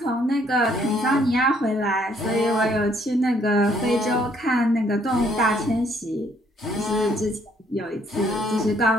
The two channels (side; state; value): both; normal; correlation 0.66